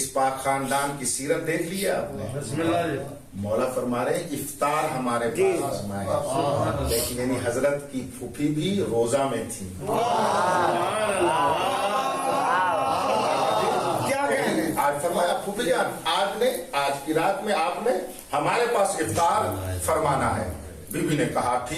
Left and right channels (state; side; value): identical; both; correlation 1.00